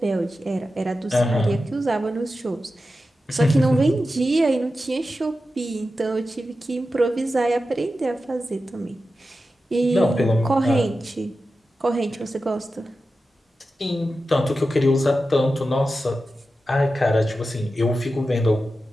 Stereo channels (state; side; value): normal; both; correlation 0.92